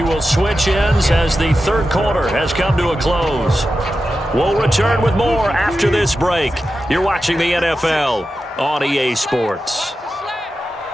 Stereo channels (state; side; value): normal; both; correlation 0.91